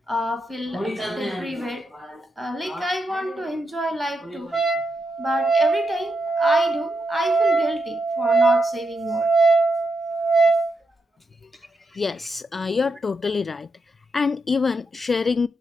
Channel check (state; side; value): normal; both; correlation 0.83